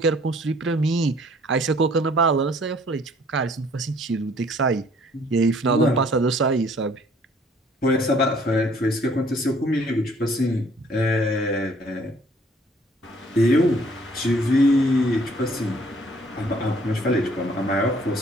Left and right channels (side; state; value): both; normal; correlation 0.59